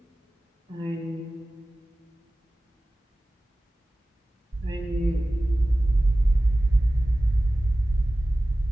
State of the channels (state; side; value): normal; both; correlation 0.97